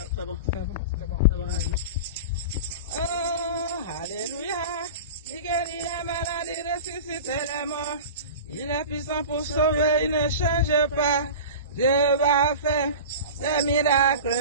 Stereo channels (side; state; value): both; inverted; correlation -0.32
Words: bon. Oh, alléluia. Il guérit les malades, il ressuscite les morts. Il est puissant pour sauver, il ne change pas. Dieu va faire des